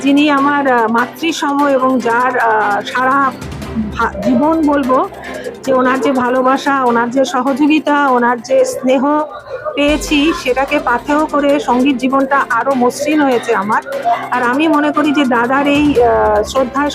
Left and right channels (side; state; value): both; identical; correlation 1.00